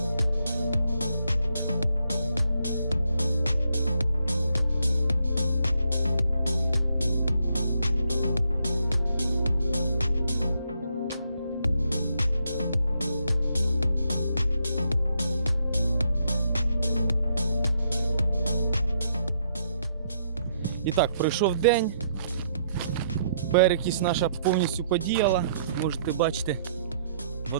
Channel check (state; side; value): inverted; both; correlation -0.73